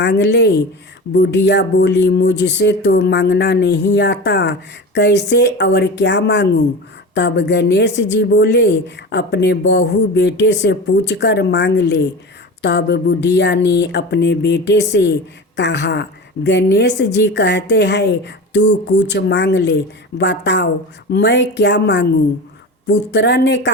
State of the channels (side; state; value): both; normal; correlation 0.30